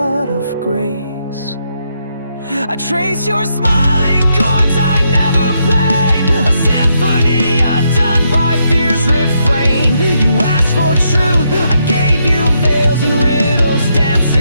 of grace. I trace your smiling chords I never played, a symphony undone by fear's refrain. You asked for truth, I gave you veils and riddles,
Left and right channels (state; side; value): inverted; both; correlation -0.79